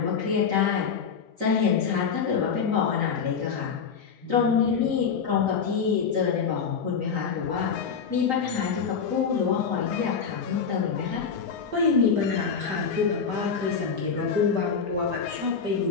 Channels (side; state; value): right; quieter; 6.2 dB